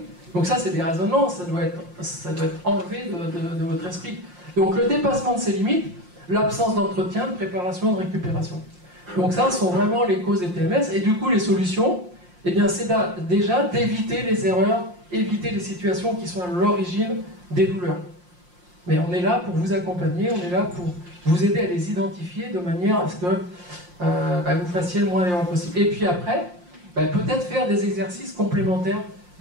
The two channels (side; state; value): left; late; 5.7 ms